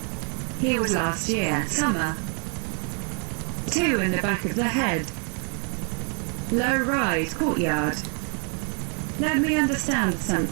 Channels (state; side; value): quieter; left; 37.3 dB